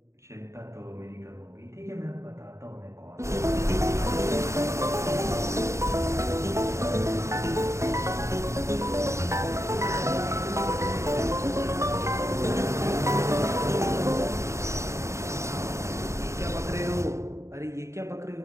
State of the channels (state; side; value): late; left; 0.14 ms